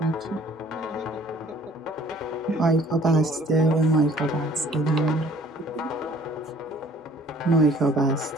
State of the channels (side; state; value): both; normal; correlation 0.55